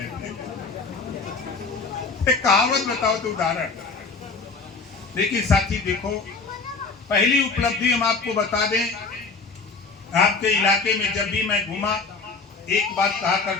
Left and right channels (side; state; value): right; quieter; 4.4 dB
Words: कहावत बताओ तो उदाहरण। लेकिन साथी देखो, पहली उपलब्धि हम आपको बता दें, आपके इलाके में जब भी मैं घूमा, एक बात कहा